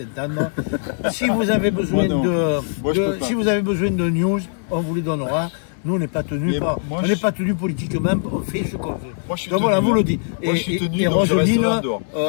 Si vous avez besoin si vous avez besoin de news, on vous les donnera. Nous on n'est pas tenus pas tenus politiquement, on fait ce qu'on veut. Donc voilà, vous le dites. Et Roseline,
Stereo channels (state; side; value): silent; right; digital silence